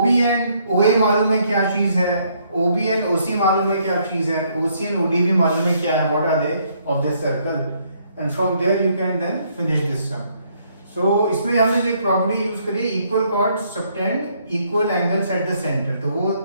एंड OA मालूम है क्या चीज है, OB एंड OC मालूम है क्या चीज है, OC एंड OD भी मालूम है क्या है, what are they of this circle, and from there you can then finish this sum. So इसमें हमने जो एक प्रॉपर्टी यूज करी, equal chord subtended equal angles at the centre, तो वो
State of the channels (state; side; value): inverted; both; correlation -0.69